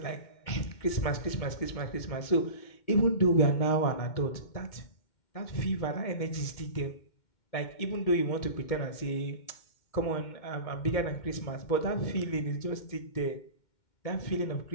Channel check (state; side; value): late; right; 2.2 ms